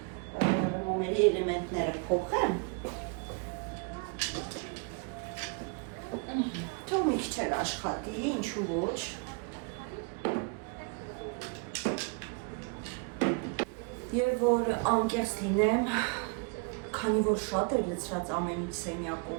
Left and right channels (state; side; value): quieter; left; 33.0 dB